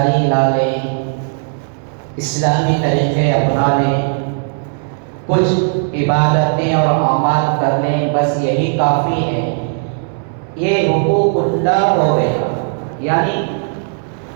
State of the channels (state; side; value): silent; left; 63 dB below the other